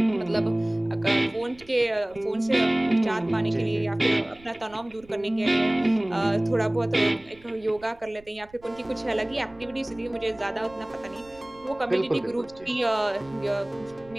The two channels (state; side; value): noise; right; rumble, 25 dB below the sound